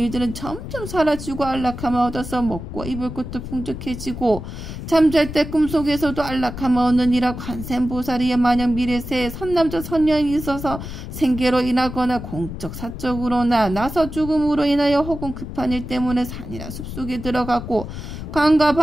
점점 사라지고 안락함을 얻어서 먹고 입을 것도 풍족해지고 잠잘 때 꿈속에서도 안락함을 얻느니라. 관세음보살이여 만약 미래세에 선남자 선녀인이 있어서 생계로 인하거나 공적 사적으로나 나서 죽음으로 인하여 혹은 급한 일 때문에 산이나 숲속에 들어가고 강과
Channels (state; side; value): noise; left; rumble, 9 dB below the sound